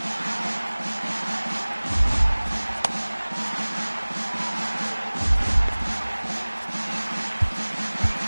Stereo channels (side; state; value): both; inverted; correlation -1.00